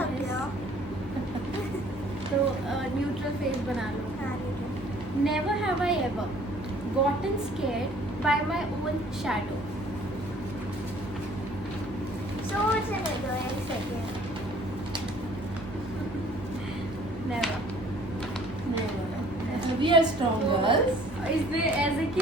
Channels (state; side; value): normal; both; correlation 0.55